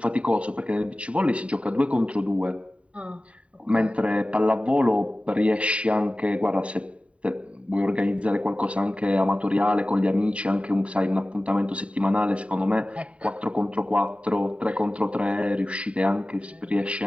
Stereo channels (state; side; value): late; left; 0.063 ms